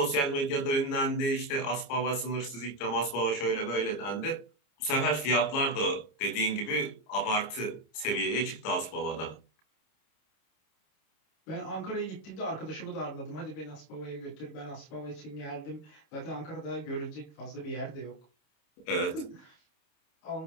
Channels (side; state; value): right; late; 29 ms